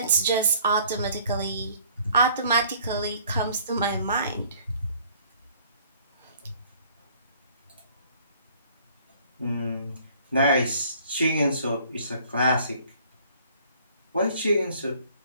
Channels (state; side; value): inverted; both; correlation -0.57